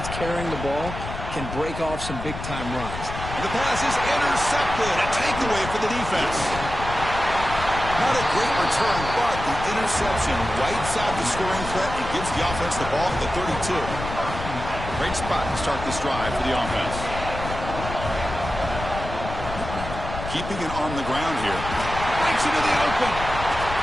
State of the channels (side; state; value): left; noise; rumble, 8 dB below the sound